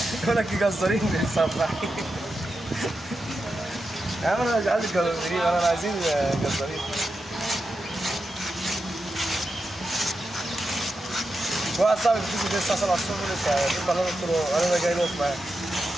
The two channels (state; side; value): normal; both; correlation 0.89